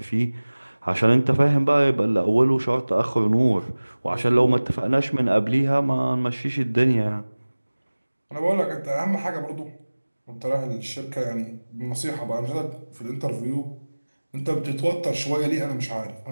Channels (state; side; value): inverted; both; correlation -1.00